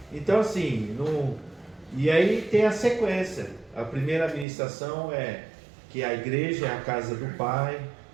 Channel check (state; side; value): drops out; left; at 4.5 s